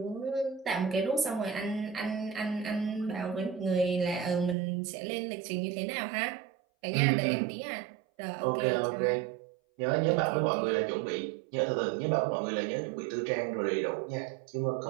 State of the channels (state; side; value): drops out; left; at 4.5 s